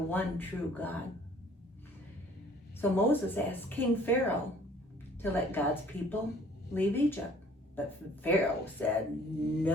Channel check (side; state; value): both; normal; correlation 0.55